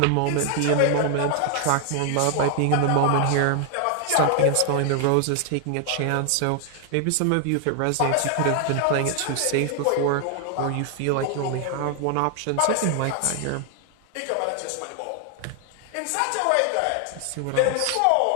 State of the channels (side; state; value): both; different; correlation 0.00